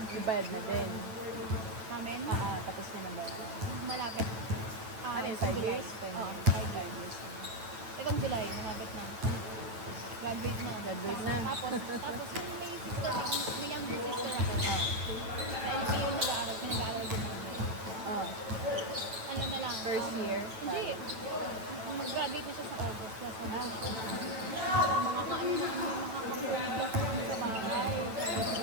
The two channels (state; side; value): late; left; 9.0 ms